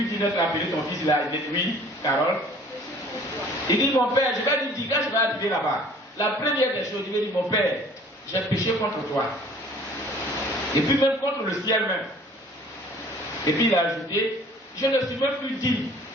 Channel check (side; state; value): both; normal; correlation 0.52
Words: dit d'être appelé ton fils, il a dit oui, Carole. Il dit, mon père, je vais lui dire, quand je vais arriver là-bas, la première des choses, il va dire, mon père, j'ai péché contre toi. Et puis même contre le ciel même. Et puis il a ajouté, je ne suis même plus digne